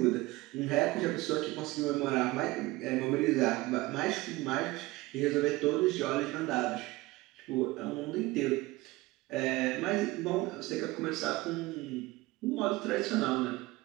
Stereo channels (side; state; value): left; quieter; 20.3 dB